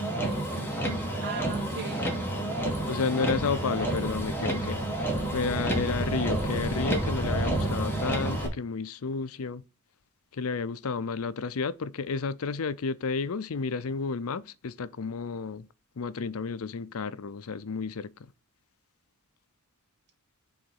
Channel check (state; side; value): normal; both; correlation 0.25